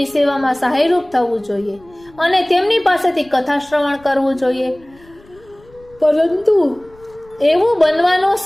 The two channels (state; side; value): noise; left; rumble, 27 dB below the sound